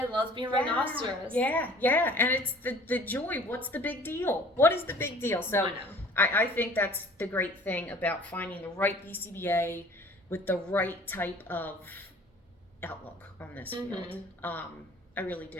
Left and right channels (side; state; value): both; normal; correlation 0.49